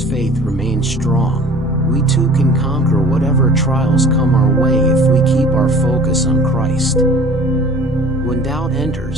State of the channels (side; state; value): both; normal; correlation 0.47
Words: faith remained strong, we too can conquer whatever trials come our way if we keep our focus on Christ. When doubt